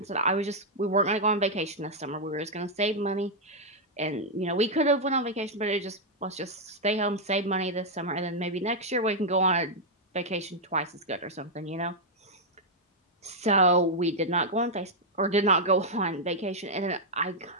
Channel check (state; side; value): normal; both; correlation -0.03